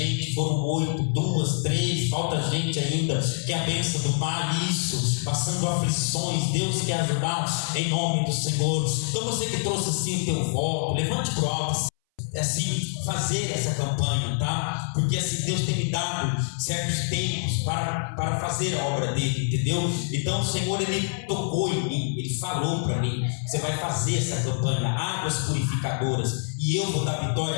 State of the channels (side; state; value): right; silent; 59 dB below the other